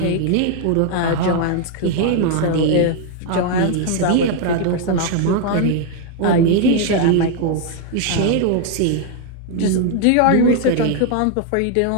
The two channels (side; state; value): both; different; correlation 0.00